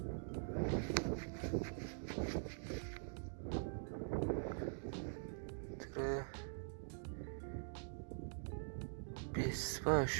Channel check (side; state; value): left; silent; digital silence